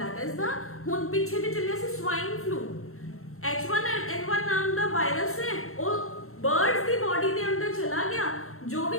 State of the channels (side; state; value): right; late; 0.63 ms